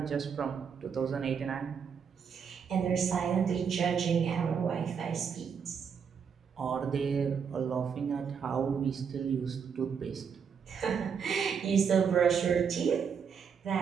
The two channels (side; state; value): left; quieter; 6.7 dB